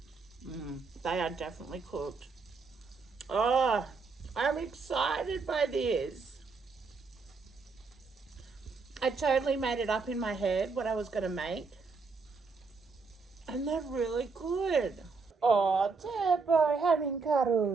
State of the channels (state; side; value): quieter; left; 4.5 dB